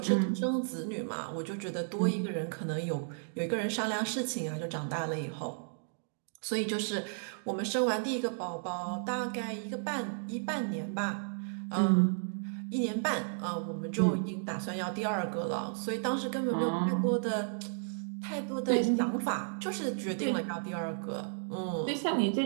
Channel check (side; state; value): left; silent; digital silence